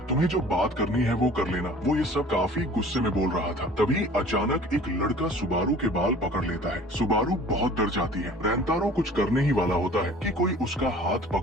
तुम्हें जो बात करनी है वो कर लेना। वो ये सब काफी गुस्से में बोल रहा था। तभी अचानक एक लड़का सुबारू के बाल पकड़ लेता है। सुबारू बहुत डर जाती है। रैंतारो कुछ करने ही वाला होता है कि कोई उसका हाथ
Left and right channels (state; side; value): normal; both; correlation 0.47